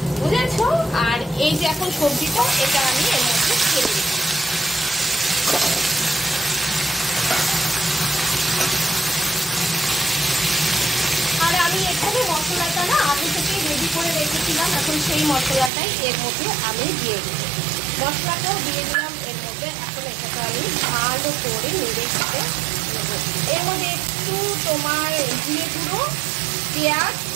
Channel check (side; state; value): left; drops out; at 15.7 s